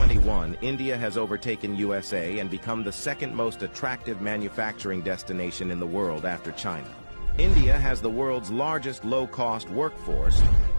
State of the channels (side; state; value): both; inverted; correlation -1.00